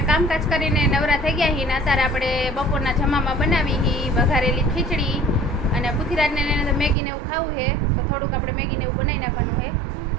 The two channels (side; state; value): left; drops out; at 7.0 s